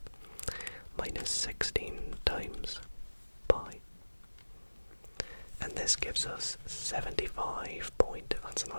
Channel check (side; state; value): both; inverted; correlation -1.00